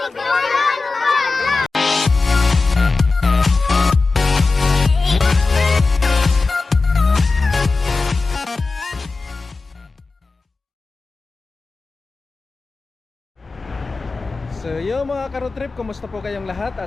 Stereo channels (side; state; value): right; quieter; 3.9 dB